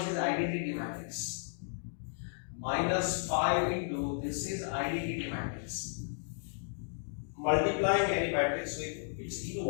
is identity matrix, minus 5 into this is identity matrix. Multiplying any matrix with its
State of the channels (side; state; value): right; silent; digital silence